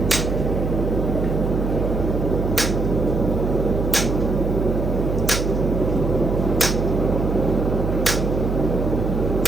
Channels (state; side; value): noise; right; hum, 1 dB below the sound